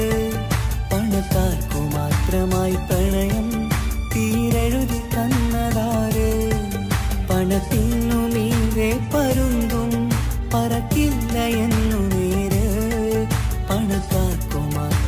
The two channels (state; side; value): identical; both; correlation 1.00